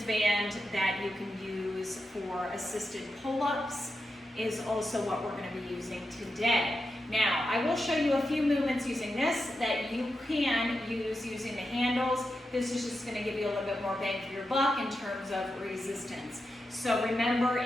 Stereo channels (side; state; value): both; normal; correlation 0.88